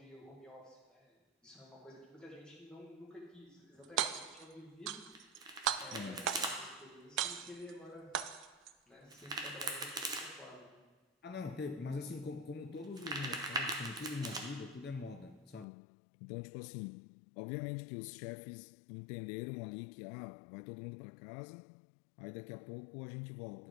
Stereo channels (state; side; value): drops out; right; at 15.7 s